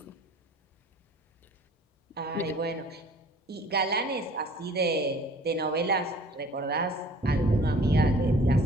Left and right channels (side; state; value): both; normal; correlation 0.50